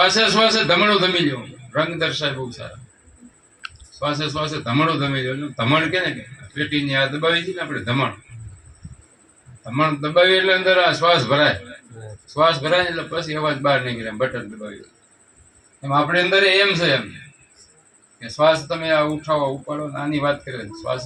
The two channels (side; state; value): both; identical; correlation 1.00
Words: શ્વાસે ધમણું ધમી લ્યો, રંગ દર્શાય બહુ સારા. શ્વાસે શ્વાસે ધમણું ધમી લ્યો. ધમણ કે ને પેટીની આ દબાવી છે ને આપણે ધમણ, ધમણ દબાવી એટલે અંદર આ શ્વાસ ભરાય. શ્વાસ ભરાય એટલે પછી અવાજ બહાર નીકળે, બટન દબાવી. એમ આપણે અંદર એમ છે એમ કે શ્વાસ તમે આ ઉઠાવો ઉપાડો, આની વાત કરે.